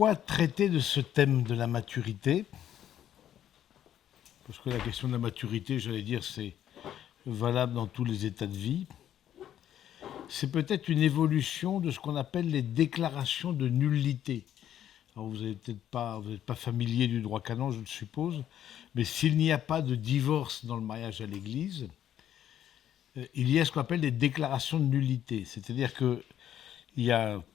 traiter de ce thème de la maturité? Parce que la question de la maturité, j'allais dire, c'est valable dans tous les états de vie. C'est peut-être une évolution de ce qu'on appelle les déclarations de nullité. Alors vous n'êtes pas familier du droit canon, je le suppose, mais s'il n'y a pas de divorce dans le mariage à l'Église, il y a ce qu'on appelle les déclarations de nullité. C'est-à-dire qu'il y a un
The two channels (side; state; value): right; quieter; 10.8 dB